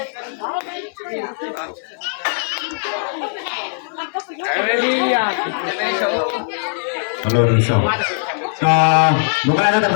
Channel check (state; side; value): silent; right; digital silence